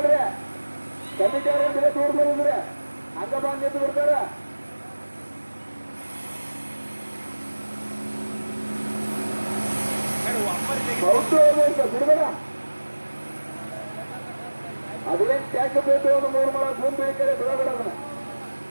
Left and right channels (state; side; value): inverted; both; correlation -1.00